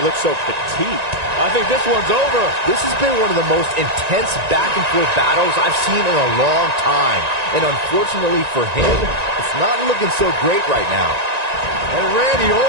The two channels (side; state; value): left; late; 1.9 ms